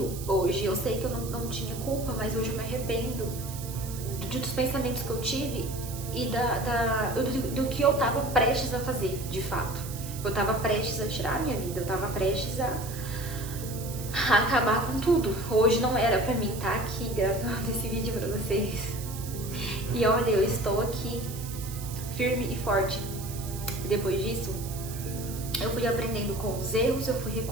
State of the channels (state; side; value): noise; right; hiss, 12 dB below the sound